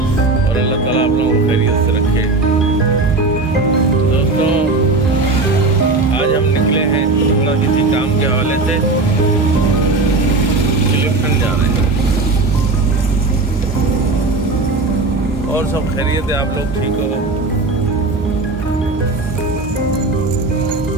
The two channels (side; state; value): left; quieter; 3.4 dB